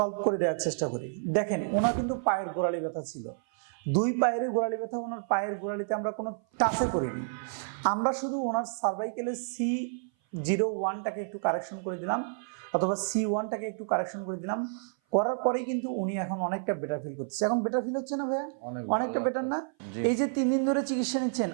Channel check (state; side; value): silent; left; 55 dB below the other